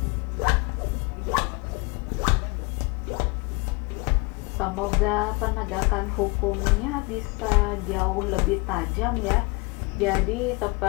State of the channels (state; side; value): quieter; right; 27.7 dB